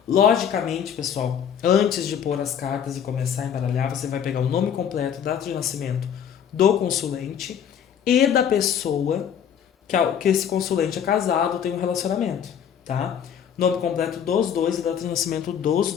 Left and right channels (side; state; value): right; quieter; 8.5 dB